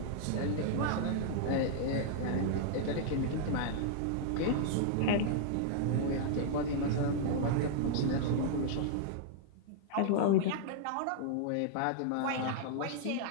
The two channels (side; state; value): both; different; correlation -0.01